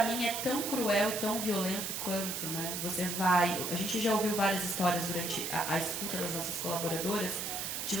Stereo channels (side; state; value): right; noise; hiss, 3 dB below the sound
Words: mim é tão cruel e tão violento quanto, né? A gente já ouviu várias histórias durante a escuta das nossas colaboradoras, de